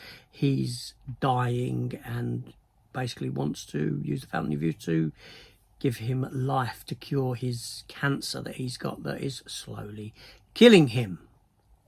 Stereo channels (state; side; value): identical; both; correlation 1.00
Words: he's dying and basically wants to use the Fountain of Youth to give him life to cure his cancer that he's got that is slowly killing him.